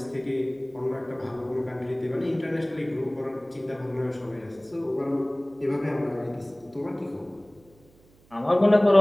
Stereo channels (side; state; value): right; noise; hum, 29 dB below the sound